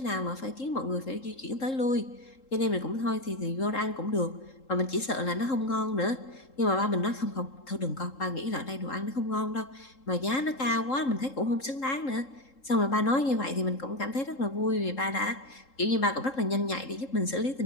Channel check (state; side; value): late; right; 3.7 ms